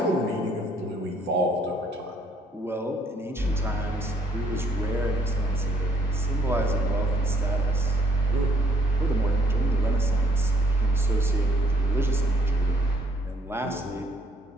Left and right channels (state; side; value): normal; both; correlation 0.66